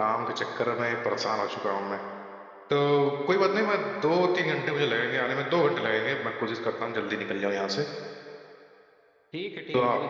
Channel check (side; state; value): both; identical; correlation 1.00